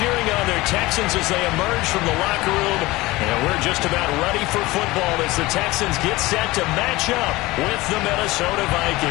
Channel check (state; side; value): quieter; right; 20.1 dB